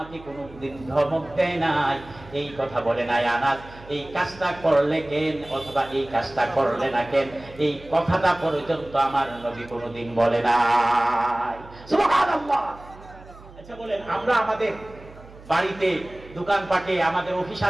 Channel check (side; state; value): right; noise; hum, 20 dB below the sound